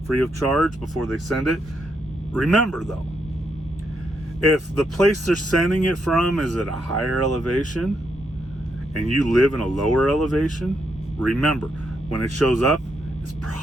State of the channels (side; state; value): both; normal; correlation 0.79